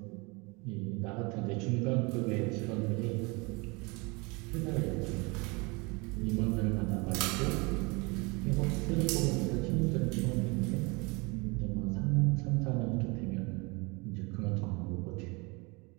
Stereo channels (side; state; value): left; quieter; 27.8 dB